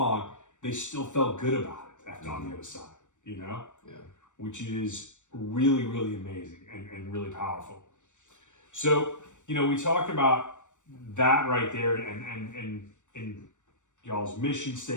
they still felt good about it on the other side. you know? Yeah. Which is really, really amazing and really powerful. So, you know, we talked about that right there and y'all's mission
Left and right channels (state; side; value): late; right; 0.85 ms